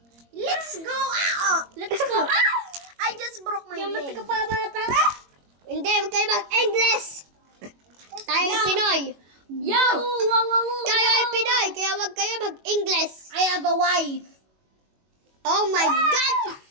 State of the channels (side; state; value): left; late; 21 ms